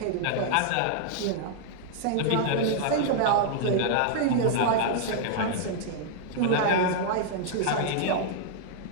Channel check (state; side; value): different; both; correlation -0.01